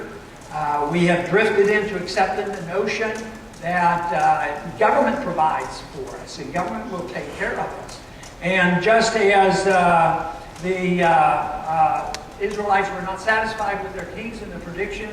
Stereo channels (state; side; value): identical; both; correlation 1.00